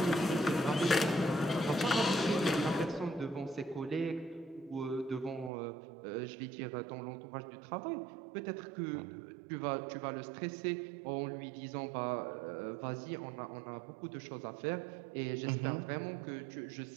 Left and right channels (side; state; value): left; drops out; at 5.5 s